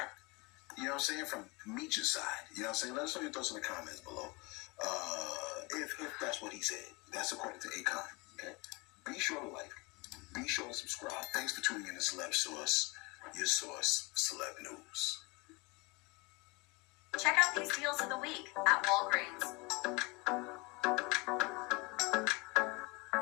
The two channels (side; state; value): right; quieter; 26.7 dB